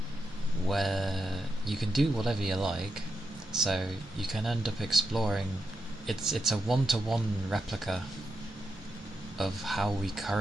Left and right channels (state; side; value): normal; both; correlation 0.86